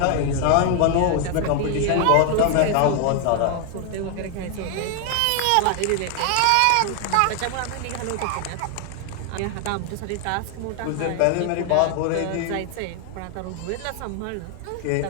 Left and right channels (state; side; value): different; both; correlation 0.00